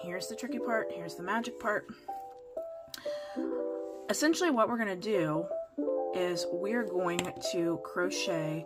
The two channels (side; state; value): both; identical; correlation 1.00